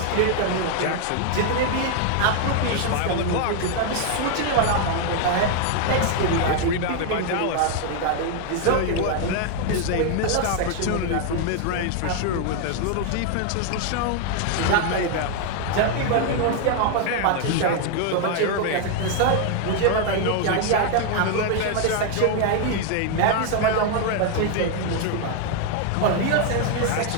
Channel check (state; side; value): different; both; correlation 0.00